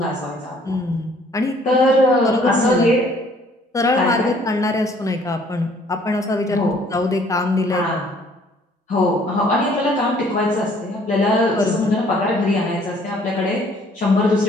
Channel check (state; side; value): normal; both; correlation 0.59